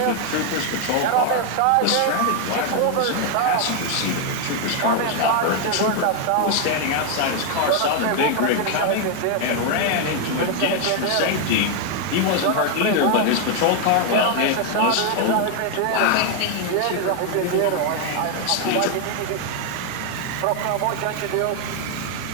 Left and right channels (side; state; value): both; different; correlation 0.00